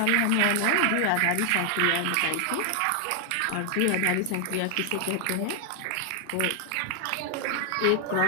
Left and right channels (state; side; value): different; both; correlation 0.00